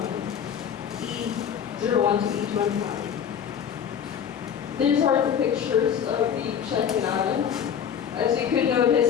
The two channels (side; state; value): right; quieter; 8.2 dB